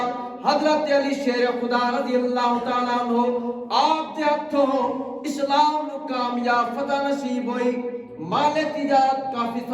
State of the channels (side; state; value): both; identical; correlation 1.00